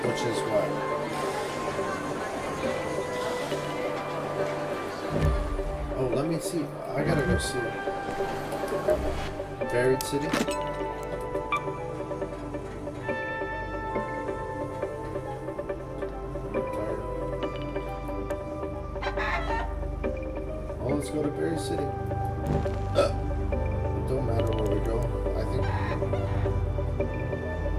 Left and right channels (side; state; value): both; identical; correlation 1.00